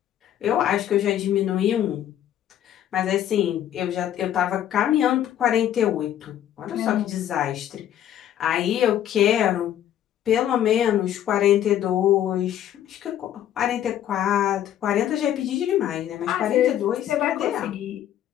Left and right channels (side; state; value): right; quieter; 11.2 dB